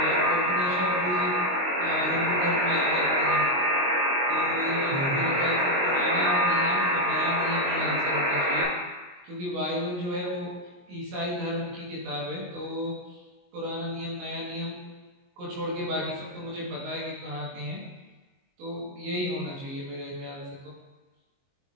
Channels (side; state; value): left; late; 22 ms